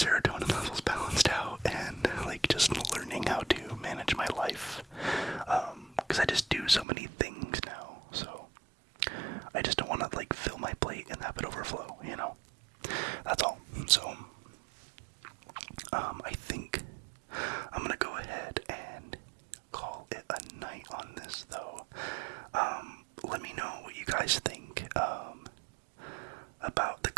levels balanced out and, like, just learning how to manage my life. Because I just do so many things now, so I just don't want to, like, fill my plate and have it overflow, you know? That's all. So, I think I'm gonna go ahead and call it a night on this, though. Let me know what you guys think, about the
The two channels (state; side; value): drops out; left; at 6.9 s